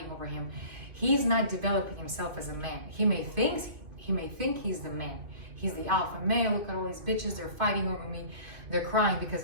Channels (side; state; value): left; late; 2.5 ms